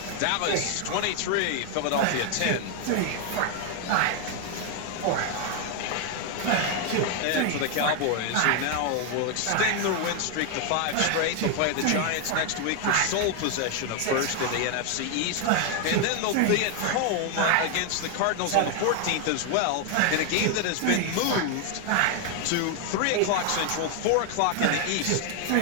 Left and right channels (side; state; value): both; different; correlation 0.01